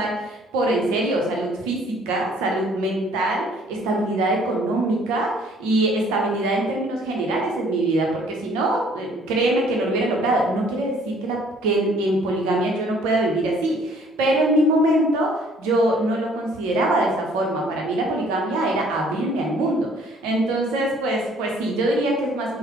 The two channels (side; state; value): both; normal; correlation 0.58